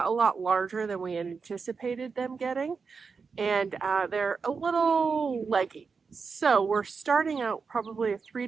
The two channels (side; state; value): left; quieter; 5.2 dB